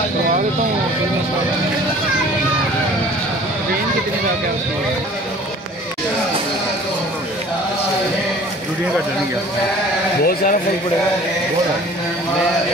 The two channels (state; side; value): normal; both; correlation 0.48